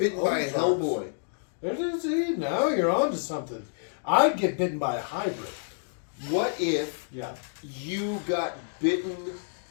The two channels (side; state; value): right; silent; digital silence